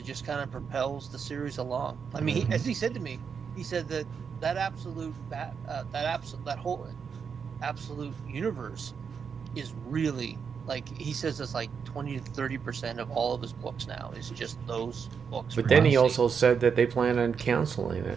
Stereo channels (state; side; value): quieter; left; 6.4 dB